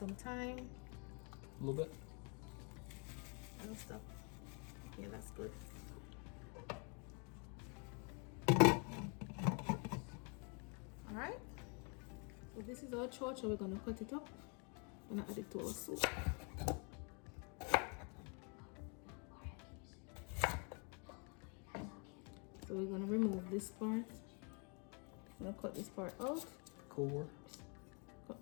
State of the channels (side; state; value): right; quieter; 36.0 dB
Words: thyme. A little bit. And stuff. Yeah, that's good. Alright. So this is our chocha. We're gonna cut it up. I'm gonna add it to our soup. So we're gonna remove this part. I'm gonna cut this part out. Core. Cut